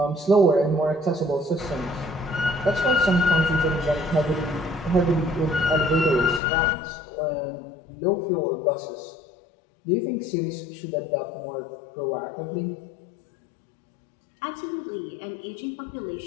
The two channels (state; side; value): drops out; right; at 6.4 s